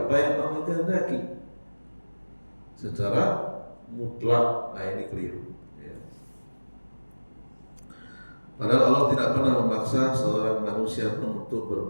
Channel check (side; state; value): both; inverted; correlation -1.00